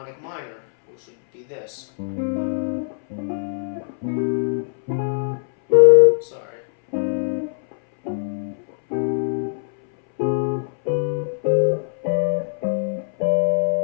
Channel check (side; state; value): right; silent; 62 dB below the other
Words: minor, which would be this. Sorry.